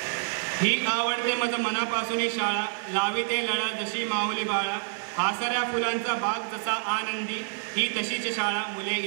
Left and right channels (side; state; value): left; silent; digital silence